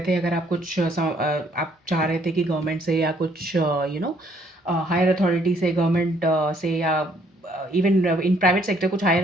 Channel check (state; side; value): normal; both; correlation 0.65